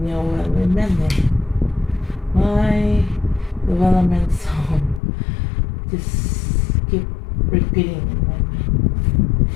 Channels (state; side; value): drops out; right; at 5.0 s